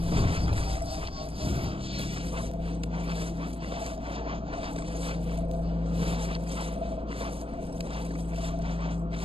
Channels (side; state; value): left; late; 0.27 ms